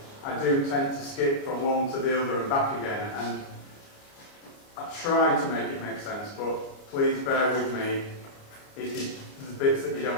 I do tend to skip from one to the other and back again. And I try to make it make sense, but please bear with me if there's bits that you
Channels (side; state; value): right; late; 29 ms